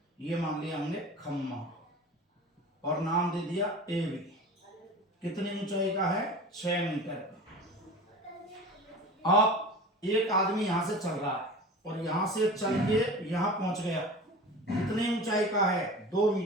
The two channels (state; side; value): normal; both; correlation 0.36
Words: ये मान लिया हमने खंभा और नाम दे दिया ए बी। कितनी ऊंचाई का है? 6 मीटर का। अब एक आदमी यहां से चल रहा है और यहां से चल के यहां पहुंच गया, कितनी ऊंचाई का है? 2